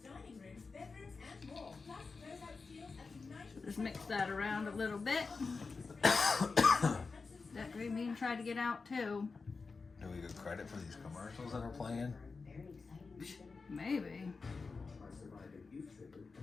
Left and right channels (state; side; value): quieter; right; 4.4 dB